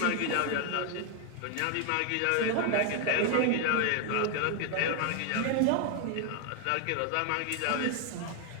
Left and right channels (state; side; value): different; both; correlation 0.00